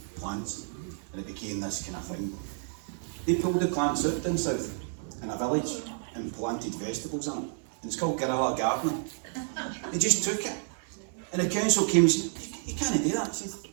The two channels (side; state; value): left; silent; 58 dB below the other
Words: plants, and it became this kind of thing. They pulled the plants out down south in a village and planted vegetables in it, and it's called guerrilla gardening. They just took it, and the council came and said, you can't do that. I said,